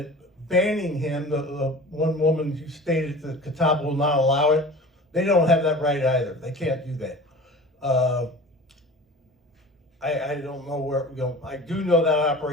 banning him, the one woman who stated that Catawba will not allow it, they don't have that right either. They can't do that. I don't know where, I do know that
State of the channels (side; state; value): both; normal; correlation 0.39